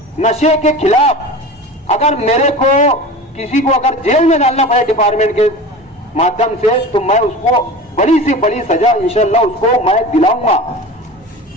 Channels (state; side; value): normal; both; correlation 0.33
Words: नशे के खिलाफ अगर मेरे को किसी को अगर जेल में डालना पड़े डिपार्टमेंट के माध्यम से तो मैं उसको बड़ी से बड़ी सजा इंशाल्लाह उसको मैं दिलाऊंगा।